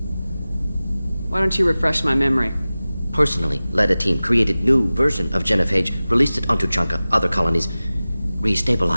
Why don't you refresh my memory? Personally led a team, created new version of genophage, released it onto Chunka, other colonies,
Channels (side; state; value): both; inverted; correlation -0.97